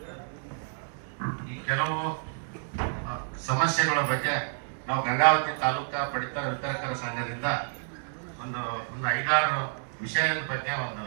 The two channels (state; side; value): silent; left; digital silence